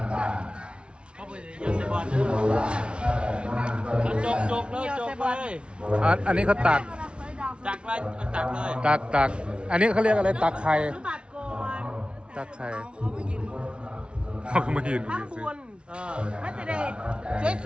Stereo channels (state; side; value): late; left; 0.058 ms